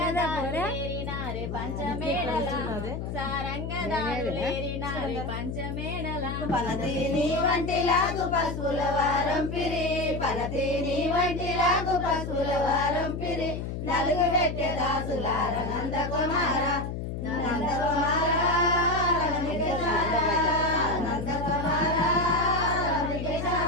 పంచమేళల సారంగదారులేరినారే పంచమేళల పలతీని వంటిలాగు పసుపుల వారం పిరి పలతీని వంటిలాగు పసుపుల వారం పిరి నలుగు పెట్టె దాసులార నందకుమార నందకుమార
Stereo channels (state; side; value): noise; left; hum, 5 dB below the sound